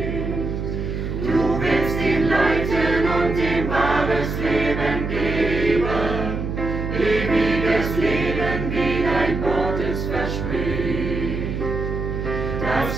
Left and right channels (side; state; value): right; noise; hum, 4 dB below the sound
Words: Du willst ihn leiten und ihm wahres Leben geben, ewiges Leben, wie dein Wort es verspricht. Das